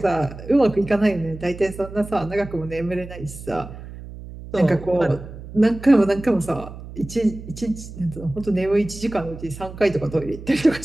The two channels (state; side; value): noise; right; hum, 13 dB below the sound